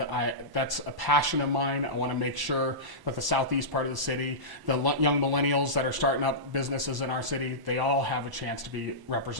that's a passion of mine. I want to make sure that the southeast part of the city, the young millennials that are starting up businesses in our city, they all have a chance to be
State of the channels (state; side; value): late; left; 1.1 ms